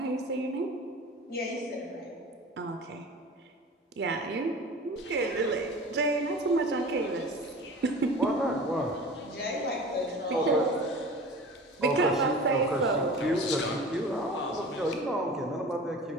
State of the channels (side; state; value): both; normal; correlation 0.38